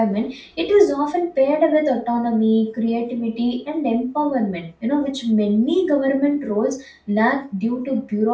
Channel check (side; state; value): both; identical; correlation 1.00